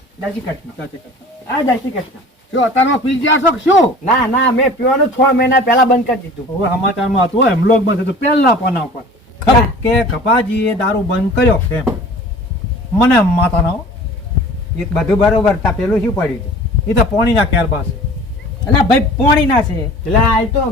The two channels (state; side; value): normal; both; correlation 0.43